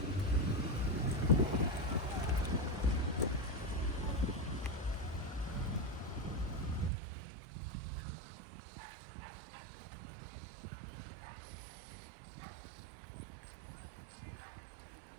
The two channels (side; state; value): left; drops out; at 6.9 s